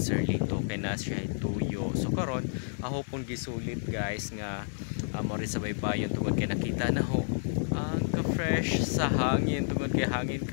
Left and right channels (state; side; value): silent; right; 58 dB below the other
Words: kay na siya tuyo. So karon ako pong gisulit guys nga mori sa baybayon tungod kay nakita na ho ang ka-fresh sa hangin tungod kay hangin